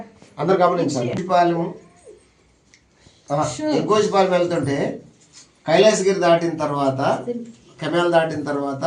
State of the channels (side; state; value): both; identical; correlation 1.00